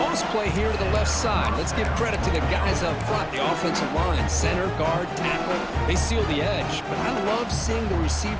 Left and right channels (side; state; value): both; identical; correlation 1.00